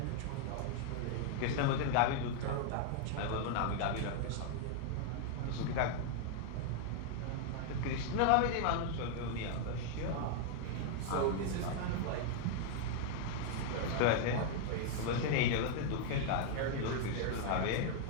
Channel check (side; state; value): both; different; correlation 0.00